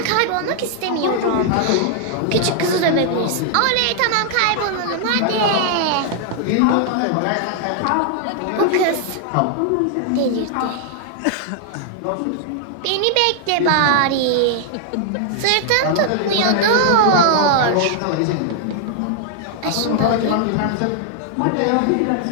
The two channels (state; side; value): different; both; correlation 0.00